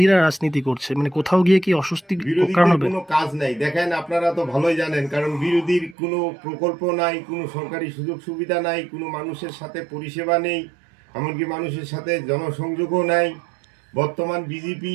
রাজনীতি করছে, মানে কোথাও গিয়ে কি অস্বস্তি কারণ হবে? কোনো কাজ নাই, দেখেন আপনারা তো ভালোই জানেন, কারণ বিরোধীর কোনো প্রকল্প নাই, কোনো সরকারি সুযোগ সুবিধা নাই, কোনো মানুষের সাথে পরিষেবা নেই, এমনকি মানুষের সাথে জনসংযোগও নাই। বর্তমান বিজেপি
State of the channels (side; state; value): left; drops out; at 6.0 s